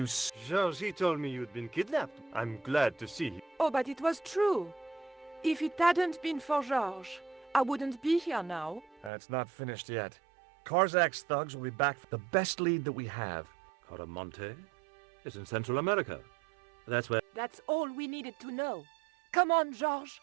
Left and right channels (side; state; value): left; drops out; at 9.1 s